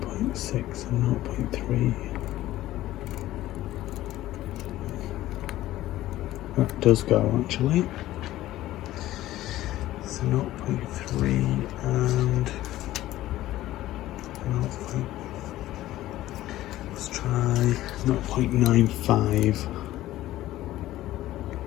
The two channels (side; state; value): right; quieter; 15.1 dB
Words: That does go actually. So 0.3 and 0. Let's try 0.95.